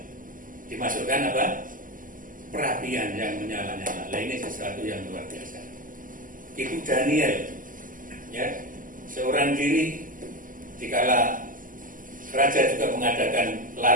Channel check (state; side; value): late; left; 0.39 ms